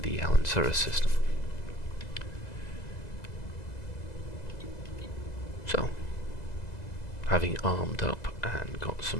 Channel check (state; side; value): late; right; 2.0 ms